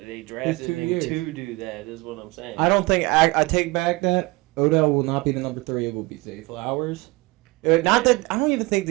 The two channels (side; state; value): left; quieter; 23.9 dB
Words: they drafted him to do that. Is what I'm saying. I don't think I take back that Odell will not be the number 3. It will be Zay Flowers. Not that I don't even think